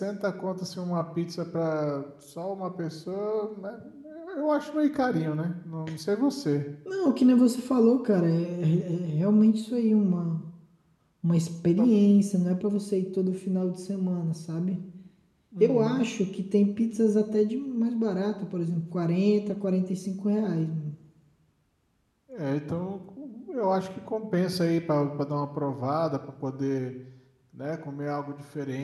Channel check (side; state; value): both; identical; correlation 1.00